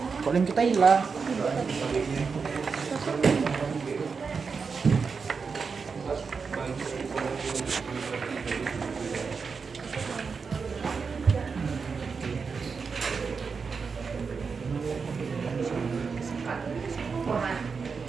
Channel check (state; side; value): quieter; left; 5.3 dB